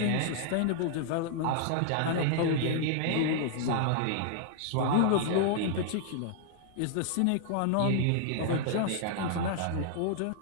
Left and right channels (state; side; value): different; both; correlation -0.01